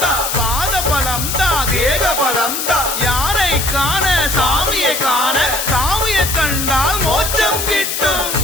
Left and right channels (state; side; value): noise; left; hiss, 3 dB below the sound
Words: தா பாதபலம் தா தேகபலம் தா யாரை காண சாமியை காண சாமியை கண்டால் மோட்சம் கிட்டும்